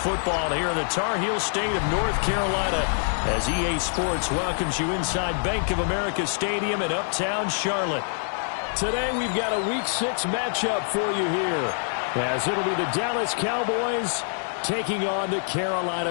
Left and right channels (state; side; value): silent; right; 61 dB below the other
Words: here in the Tar Heel state of North Carolina as EA Sports welcomes you inside Bank of America Stadium in uptown Charlotte. Today we've got a Week 6 matchup for you here as it'll be the Dallas Cowboys taking on the